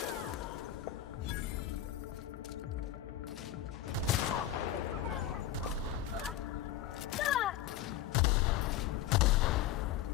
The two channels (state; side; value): quieter; right; 11.5 dB